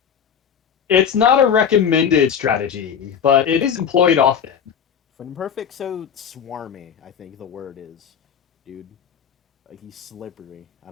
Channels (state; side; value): quieter; right; 7.8 dB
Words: it's not a recommended strategy, but it is employed often. When Perfect so swarmy, I think the word is, dude. Like he's slippery. I